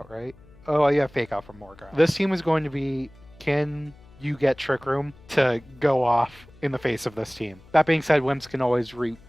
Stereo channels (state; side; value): noise; left; hum, 25 dB below the sound